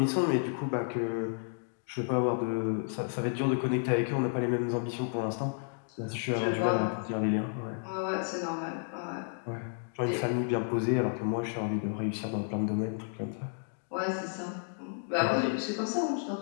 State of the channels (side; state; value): right; silent; 57 dB below the other